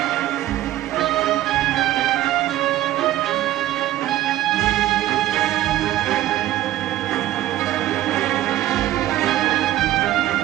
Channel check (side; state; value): left; quieter; 14.3 dB